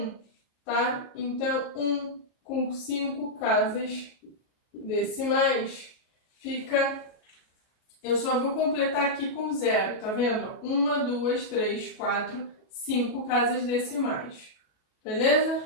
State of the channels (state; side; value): late; right; 37 ms